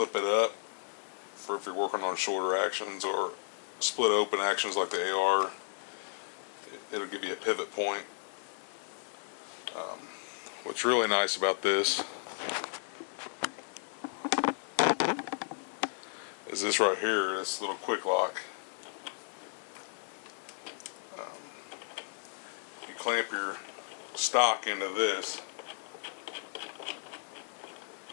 it up for if you're working on shorter actions or split open actions like the AR. It'll give you a pivot point. What's really nice about this is this right here, this little quick lock. You clamp your stock into this,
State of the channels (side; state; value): right; silent; 55 dB below the other